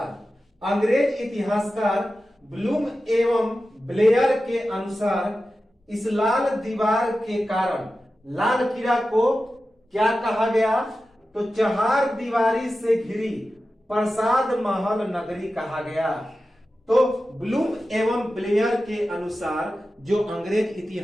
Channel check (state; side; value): normal; both; correlation 0.93